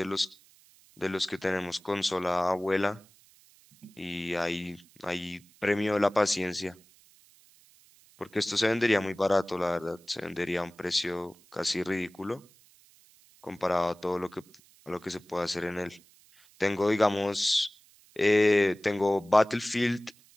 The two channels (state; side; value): noise; right; hiss, 28 dB below the sound